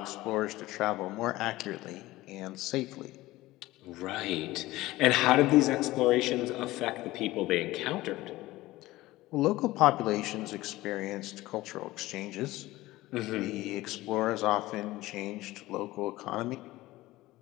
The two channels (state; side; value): quieter; right; 18.0 dB